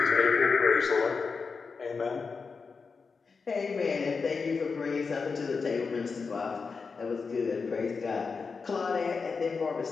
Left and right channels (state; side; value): quieter; right; 4.9 dB